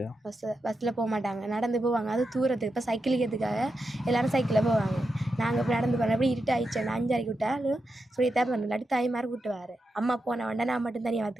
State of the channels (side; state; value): both; normal; correlation 0.88